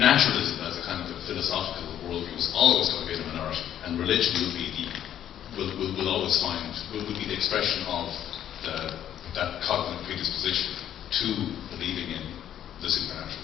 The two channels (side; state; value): right; quieter; 10.7 dB